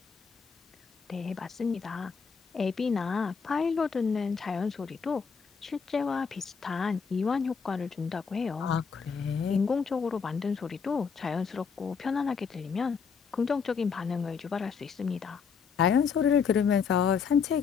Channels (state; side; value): quieter; right; 5.9 dB